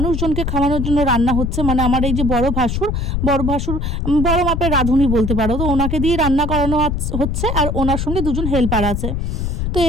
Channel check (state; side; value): noise; left; rumble, 1 dB below the sound